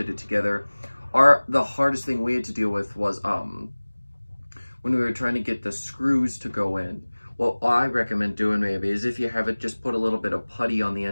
it together. The hardest thing we had to deal with was when we were trying to get the screws to go in. What I recommend doing maybe is, if you have it, just put a little bit of putty on the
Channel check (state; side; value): inverted; both; correlation -1.00